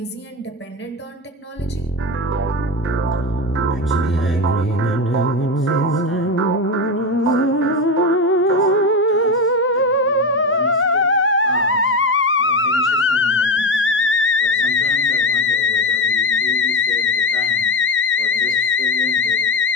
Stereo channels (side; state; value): both; normal; correlation 0.17